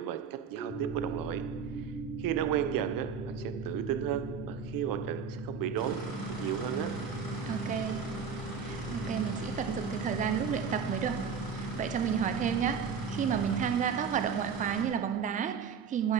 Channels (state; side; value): quieter; left; 6.6 dB